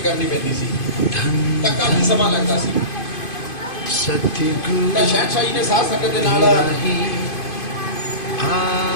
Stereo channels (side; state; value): right; late; 2.5 ms